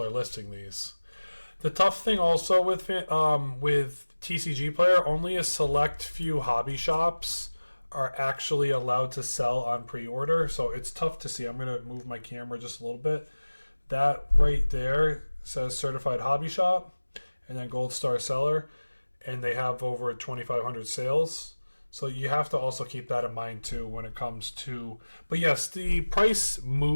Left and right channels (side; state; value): both; inverted; correlation -1.00